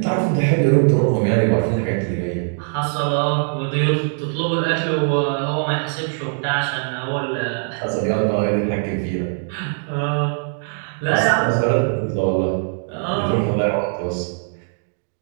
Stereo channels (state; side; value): silent; left; 62 dB below the other